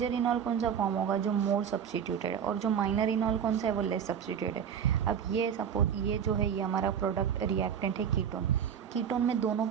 इनॉल कौन सा फॉर्म होगा, जो मोर सब्स्टिट्यूटेड है, और जो माइनर इनॉल कौन सा है वो लेस सब्स्टिट्यूटेड है। अब ये सपोज ये जो है ये हमारा प्रोडक्ट रिएक्टेंट है कीटोन में दोनों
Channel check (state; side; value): quieter; left; 8.1 dB